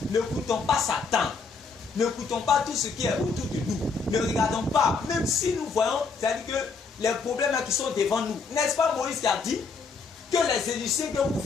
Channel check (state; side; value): quieter; right; 4.8 dB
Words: Ne coûtons pas Satan. Ne coûtons pas tout ce qui est autour de nous. Ne regardons pas. Même si nous voyons, c'est-à-dire que les problèmes qui sont devant nous. N'est-ce pas Moïse qui a dit que les Égyptiens que vous